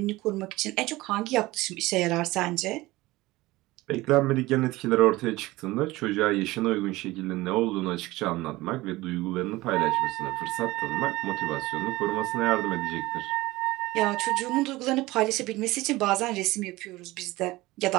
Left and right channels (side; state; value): left; quieter; 19.4 dB